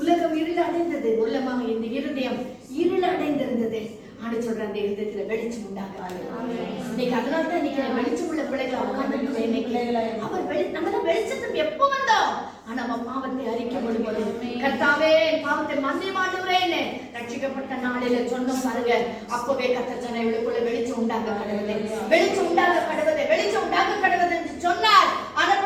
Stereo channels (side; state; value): both; identical; correlation 1.00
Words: இருள் அடைந்தது. உள்ளமாக இந்த இருதயம் இருள் அடைந்திருந்தது. ஆண்டு சொல்ற அந்த இருதயத்துல வெளிச்சம் உண்டாக. இன்னைக்கு அதனால தான் இன்னைக்கு வெளிச்சம் உள்ள பிள்ளைகளை உட்கார்ந்து நம்ம வெளிச்சத்துக்கு எப்போ வந்தோம், ஆனா நம்ம பாவத்தை அறிக்கை பண்ணும்போது கர்த்தாவே பாவத்தை மன்னிமாடுறேன்னு ரட்சிக்கப்பட்ட நாளில சொன்ன பாருங்க, அப்பவே கர்த்தர் சொன்ன இவளுக்குள்ள வெளிச்சம் உண்டாக கடவுளே, வெளிச்சம் உண்டாக கடவுளே, வெளிச்சம் உண்டாக கடவுளே என்று சொன்னார்.